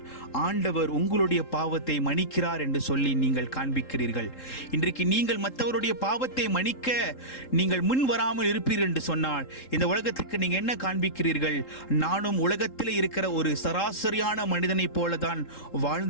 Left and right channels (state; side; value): late; right; 3.8 ms